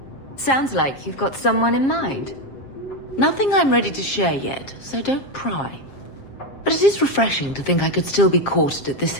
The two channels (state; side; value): late; right; 7.4 ms